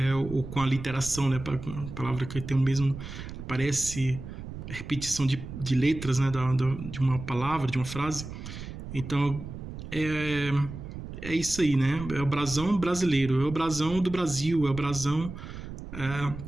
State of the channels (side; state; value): right; noise; rumble, 10 dB below the sound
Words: Ou com a literação, né? A palavra que tem o mesmo, parece repetição de letras, né? De uma palavra, de uma frase. Então, é isso aí, né? É o brasão brasileiro, é o brasão do Brasil, é o brasão,